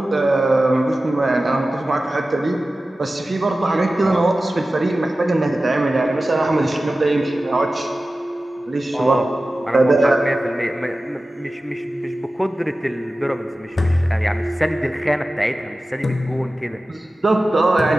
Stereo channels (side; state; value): both; normal; correlation 0.95